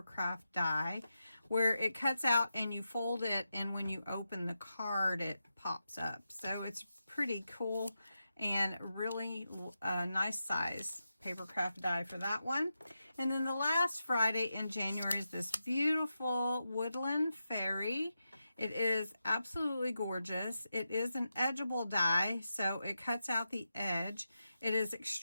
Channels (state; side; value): inverted; both; correlation -0.89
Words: die, where it cuts out and you fold it, and when you open the card, it pops up. So it's pretty cool and really nice size Papercraft die for that one. And then the last Friday in January is this beautiful Woodland Fairy. It is absolutely gorgeous. It is an edgeable die, so it cuts out the edge. It is